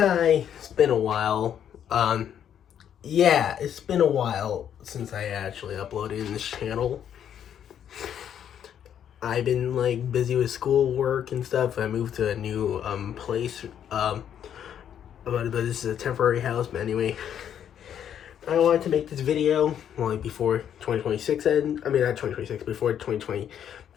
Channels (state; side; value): quieter; right; 9.3 dB